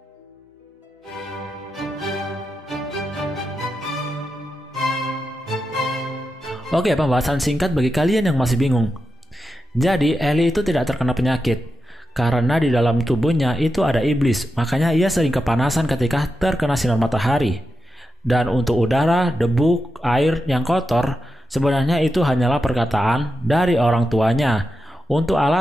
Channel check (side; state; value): both; normal; correlation 0.89